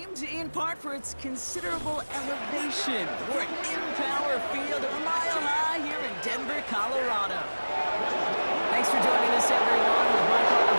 in part for its considerable elevation. We're at Empower Field, a mile high here in Denver, Colorado. Thanks for joining us, everyone. With my partner,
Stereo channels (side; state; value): both; inverted; correlation -1.00